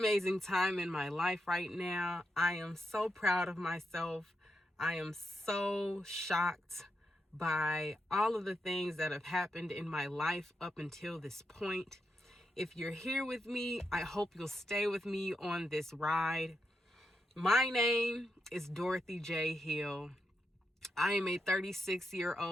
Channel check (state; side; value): normal; both; correlation 0.84